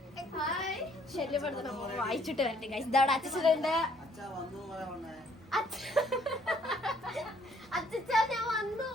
ശല്യപ്പെടുത്തണം. വായിച്ചിട്ട് വരട്ടെ ഗൈസ്. ഇതവിടെ അച്ഛനുണ്ട്. അച്ഛാ ഞാൻ വന്നു.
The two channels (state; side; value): normal; both; correlation 0.64